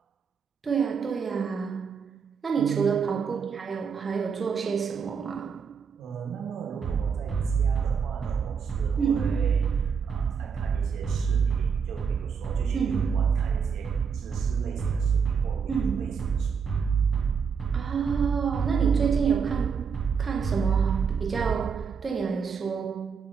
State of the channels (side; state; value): left; quieter; 6.2 dB